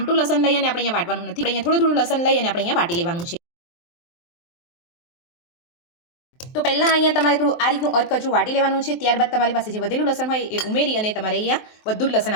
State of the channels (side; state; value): right; late; 23 ms